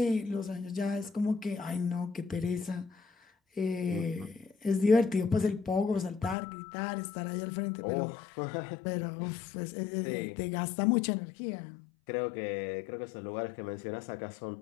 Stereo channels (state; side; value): drops out; right; at 6.4 s